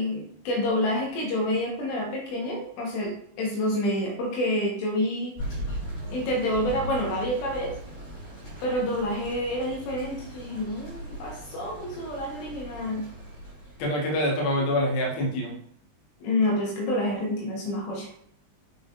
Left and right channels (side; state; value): right; late; 20 ms